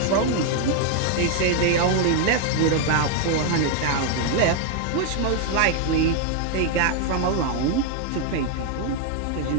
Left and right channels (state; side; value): different; both; correlation 0.00